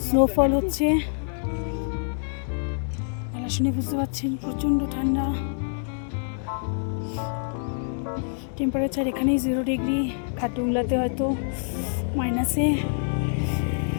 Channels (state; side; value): silent; right; digital silence